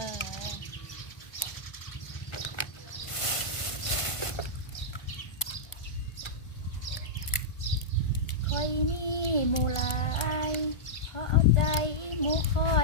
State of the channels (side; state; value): right; late; 1.4 ms